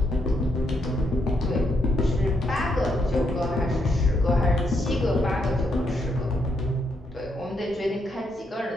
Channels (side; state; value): both; normal; correlation 0.78